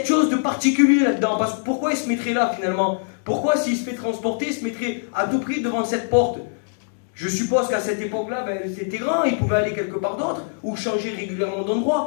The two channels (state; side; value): silent; right; digital silence